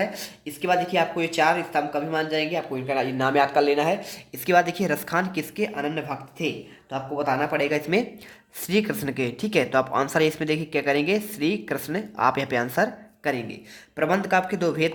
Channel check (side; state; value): both; identical; correlation 1.00